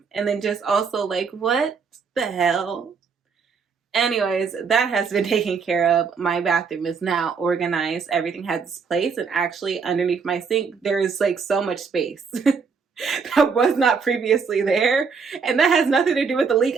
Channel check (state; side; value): quieter; left; 5.6 dB